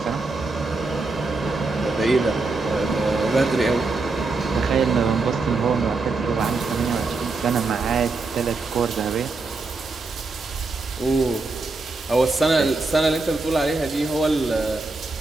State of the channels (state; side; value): quieter; left; 3.6 dB